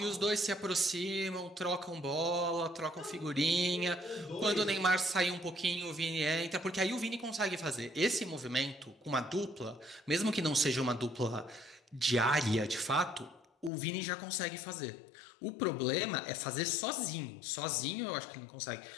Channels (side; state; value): right; drops out; at 13.7 s